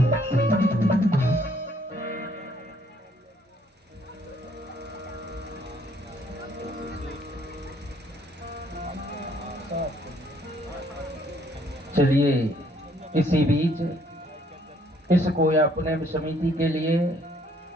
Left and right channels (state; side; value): normal; both; correlation 0.65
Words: चलिए इसी बीच इस कोया पुनः समिति के लिए